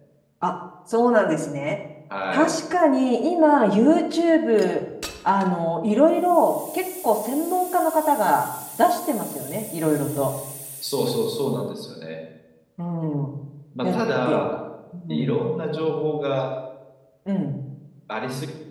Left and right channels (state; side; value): identical; both; correlation 1.00